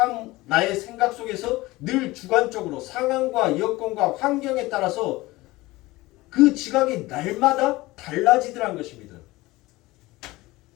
나의 생각 속에서 늘 주관적으로 상황과 여건과 환경에 따라서 그 지각이 날마다 달라지더란 것입니다.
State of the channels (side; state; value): right; quieter; 19.8 dB